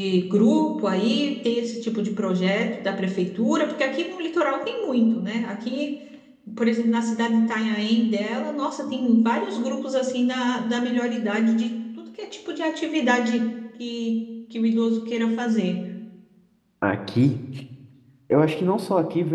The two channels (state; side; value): identical; both; correlation 1.00